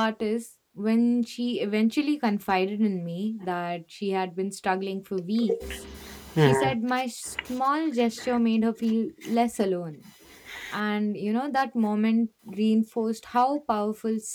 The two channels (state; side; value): identical; both; correlation 1.00